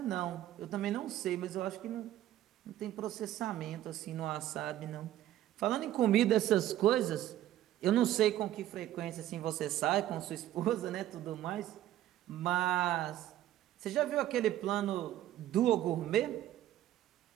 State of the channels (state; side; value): quieter; left; 13.1 dB